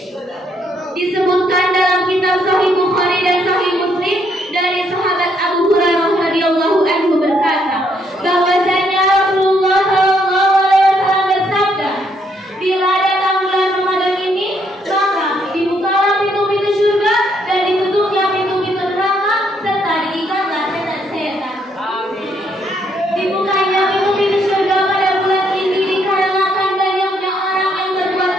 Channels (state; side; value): normal; both; correlation 0.72